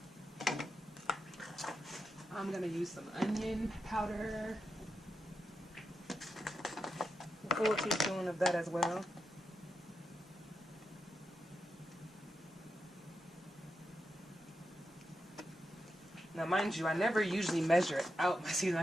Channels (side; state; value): both; normal; correlation 0.87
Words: I'm gonna use some onion powder, a full teaspoon of that as well. Now, mind you, I never usually measure out my seasoning. I